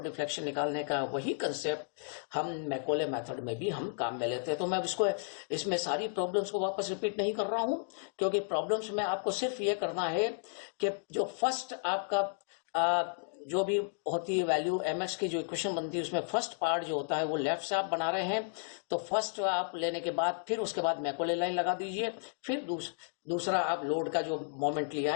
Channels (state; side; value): silent; right; digital silence